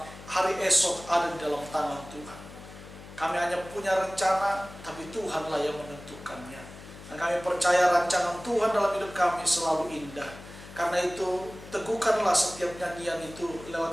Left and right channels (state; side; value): noise; left; hum, 16 dB below the sound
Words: hari esok ada di dalam tangan Tuhan. Kami hanya punya rencana, tapi Tuhanlah yang menentukannya. Dan kami percaya rancangan Tuhan dalam hidup kami selalu indah. Karena itu, teguhkanlah setiap nyanyian itu